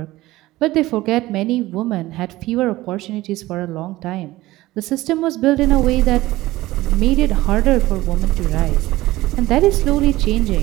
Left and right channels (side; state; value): left; quieter; 17.7 dB